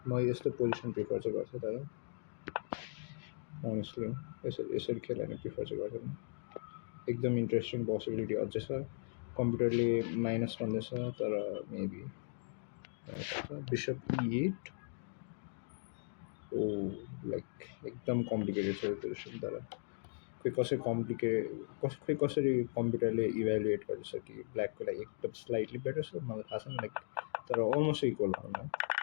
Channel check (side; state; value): right; silent; digital silence